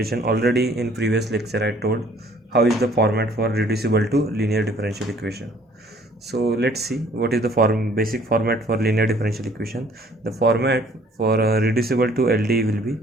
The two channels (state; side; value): normal; both; correlation 0.57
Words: already in previous lecture I told how is the format for reducible to linear differential equation. So let's see what is the basic format for linear differential equation. The format for reducible to LD will be